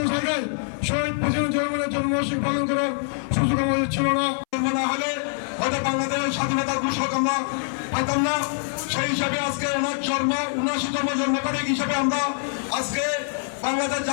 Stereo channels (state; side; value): silent; right; 62 dB below the other